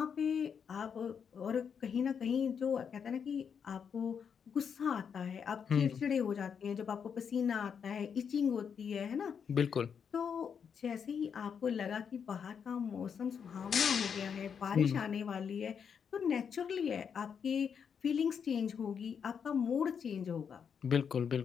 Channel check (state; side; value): quieter; right; 7.0 dB